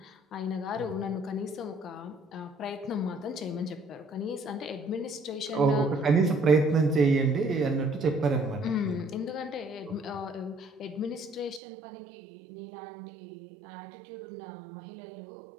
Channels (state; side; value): drops out; left; at 11.6 s